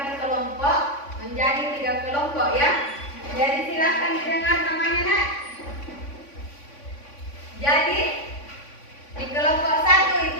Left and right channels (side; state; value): right; late; 3.5 ms